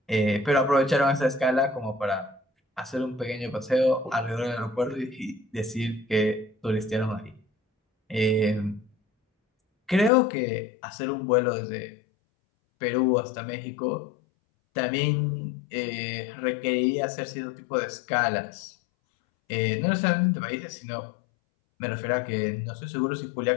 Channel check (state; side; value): drops out; right; at 10.1 s